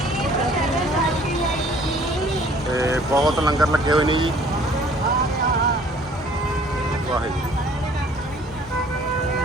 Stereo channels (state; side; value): normal; both; correlation 0.55